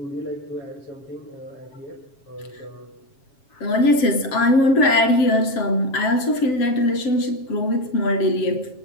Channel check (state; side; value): late; right; 7.3 ms